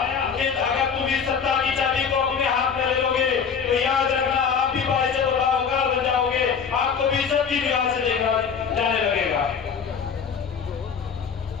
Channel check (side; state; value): right; quieter; 6.5 dB